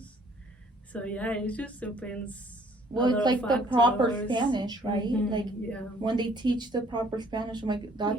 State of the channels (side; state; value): both; normal; correlation 0.60